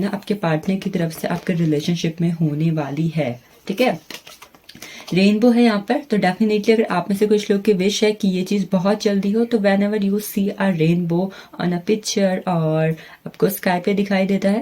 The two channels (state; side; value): identical; both; correlation 1.00